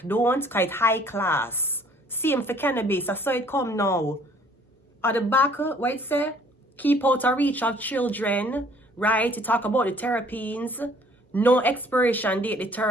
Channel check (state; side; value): normal; both; correlation 0.57